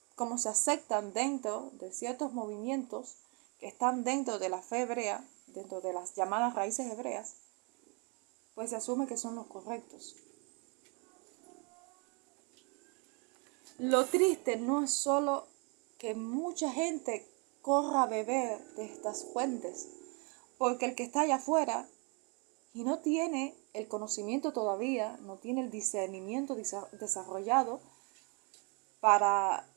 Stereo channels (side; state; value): left; quieter; 34.1 dB